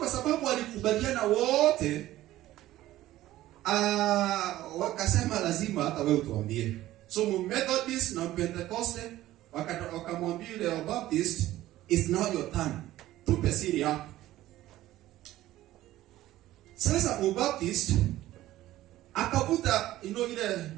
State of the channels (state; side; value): quieter; left; 15.1 dB